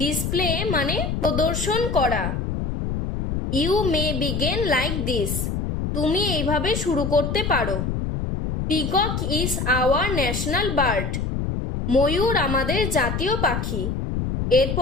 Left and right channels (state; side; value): noise; left; rumble, 2 dB below the sound